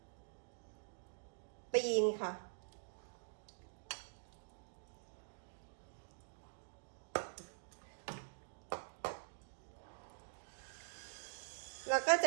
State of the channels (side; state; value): left; silent; digital silence